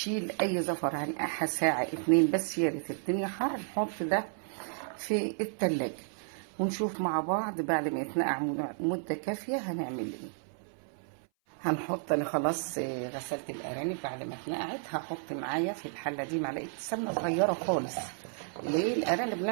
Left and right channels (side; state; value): left; silent; 56 dB below the other